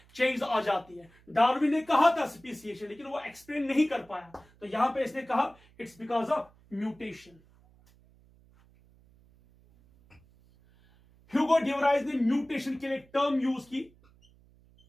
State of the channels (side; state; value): right; noise; hum, 29 dB below the sound